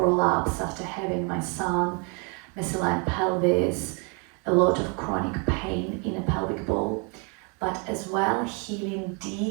after having my son, misaligned pelvis, a lot of chronic pain in a pelvic bowl, but as well healing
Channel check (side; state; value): left; quieter; 35.1 dB